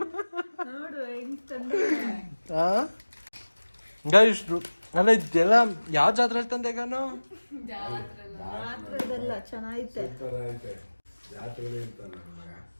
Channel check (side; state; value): both; inverted; correlation -1.00